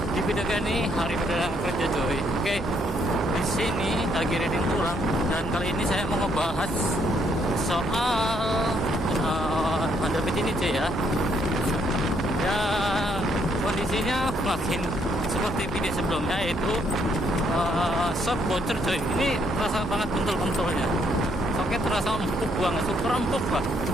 di video ini hari perdana kerja coy. Oke, di sini lagi reading pulang dan kali ini saya mau ngebahas soal Honda Beat ini cuy ya. Ya kondisinya makin seperti video sebelumnya, yaitu shock bocor coy. Ini terasa banget bentul-bentulnya. Shocknya terasa empuk banget, super empuk lah.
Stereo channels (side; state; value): both; normal; correlation 0.71